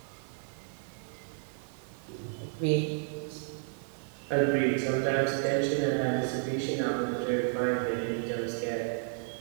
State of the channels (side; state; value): left; silent; digital silence